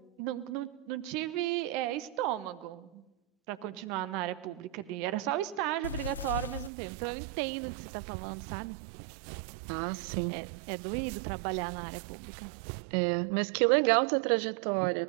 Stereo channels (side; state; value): left; drops out; at 6.7 s